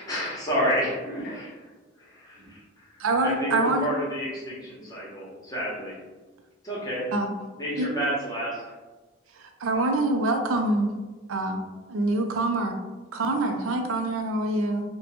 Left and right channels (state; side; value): normal; both; correlation 0.20